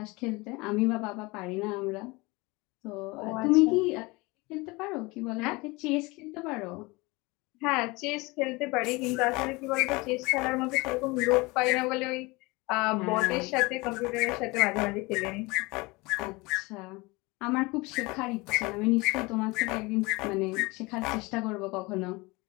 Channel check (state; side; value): quieter; right; 24.2 dB